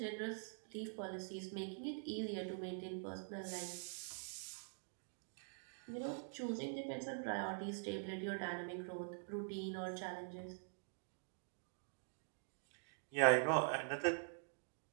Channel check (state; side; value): silent; left; digital silence